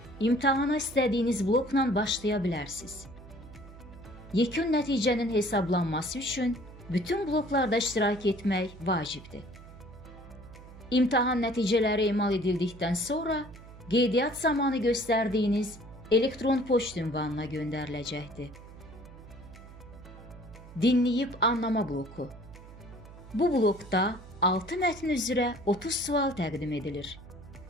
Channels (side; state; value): right; noise; hum, 18 dB below the sound